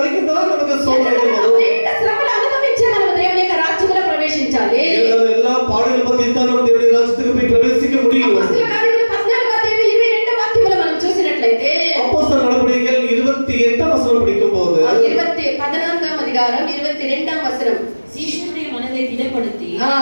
தான் நமக்கு சோதனைகள் வரும். అనేక శ్రమలు అనుభవించే మనం దేవుని యొక్క రాజ్యంలో ప్రవేశించాలి. எல்லா பாடுகள் பத்தி தான் நம்ம தேவனுடைய ராஜ்யத்துக்கு போய் பிரவேசிக்க முடியும். అపొస్తలుల కార్యములు 14:22 వాక్యములో మనం చూసినట్లయితే, அப்போஸ்தலர் நடபடிகள் 28ஆம் வசனம் படிக்கும்போது 14వ అధికారం 22వ వచనం. சீஷனுடைய மனதை திடப்படுத்தி ఆ,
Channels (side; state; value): both; inverted; correlation -1.00